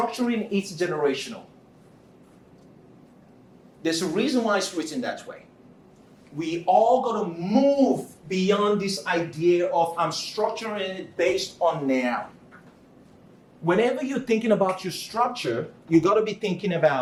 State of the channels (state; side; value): identical; both; correlation 1.00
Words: it generational. There's a reason why it's written that way. we all got to move beyond this idea of I'm structuring it based on now. Whenever you're thinking about your structure, you got to be thinking